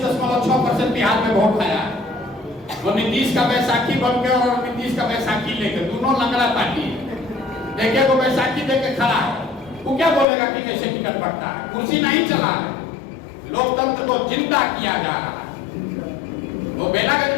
बिहार में वोट आया है। वो नीतीश का बैसाखी बन के और नीतीश का बैसाखी लेकर, दोनों लंगड़ा पार्टी है। देखिए वो बैसाखी देके खड़ा है, वो क्या बोलेगा कि कैसे टिकट बढ़ता है? कुर्सी नहीं चला है, लोकतंत्र को जिंदा किया जा रहा है। वो बेलागंज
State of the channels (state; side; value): drops out; right; at 10.2 s